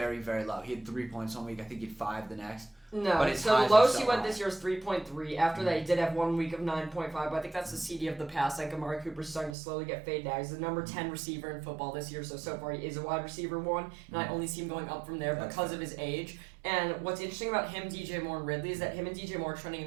very low. He had 3 points one week. I think he had 5 the next. No, so the lowest he went this year was 3.3. After that, he did have 1 week of 9.5, but I think that's the CD of the past. Amari Cooper's starting to slowly get faded out. He's the number 10 receiver in football this year, so far he is a wide receiver 1, and I only see him going up from there because of his age. And what's interesting about him, DJ Moore, and Ridley is that him and DJ Moore are trending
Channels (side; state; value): left; drops out; at 9.6 s